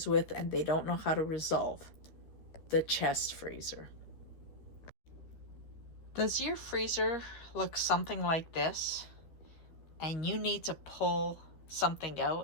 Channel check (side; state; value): right; late; 13 ms